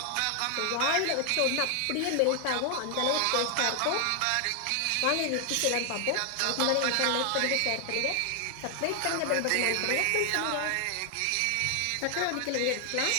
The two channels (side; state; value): both; different; correlation 0.00